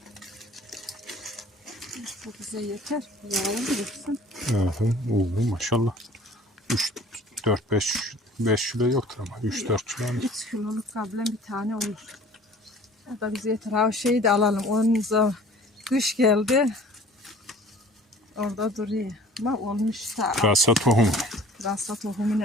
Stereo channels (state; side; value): normal; both; correlation 0.48